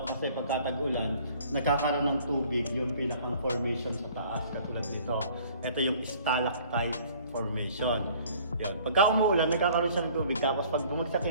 pagkatag-ulan, nagkakaroon ng tubig yung pinakang formation sa taas katulad dito. Ito yung stalactite formation. Yan. Pagka umuulan, nagkakaroon siya ng tubig. Tapos pag bumagsak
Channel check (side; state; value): both; inverted; correlation -0.53